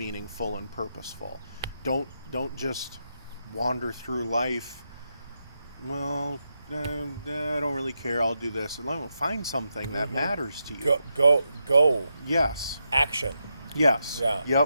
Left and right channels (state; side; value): inverted; both; correlation -0.85